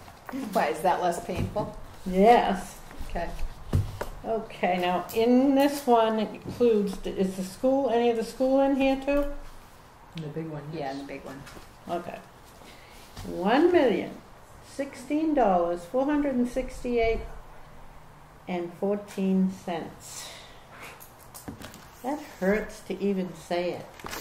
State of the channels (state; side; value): identical; both; correlation 1.00